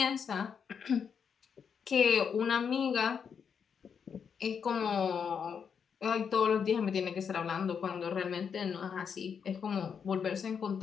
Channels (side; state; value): right; quieter; 6.9 dB